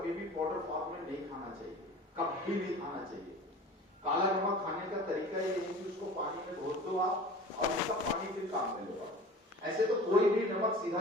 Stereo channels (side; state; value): both; normal; correlation 0.40